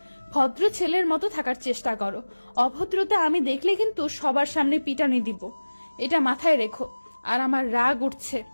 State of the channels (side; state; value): both; inverted; correlation -1.00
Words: ভদ্র ছেলের মতো থাকার চেষ্টা করো, অভদ্রতা আমি দেখলে কিন্তু সবার সামনে পিটানি দিব, এটা মাথায় রেখো। আর আমার রাগ উঠছে,